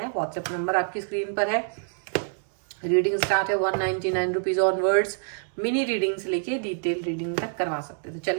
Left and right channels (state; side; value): silent; left; 61 dB below the other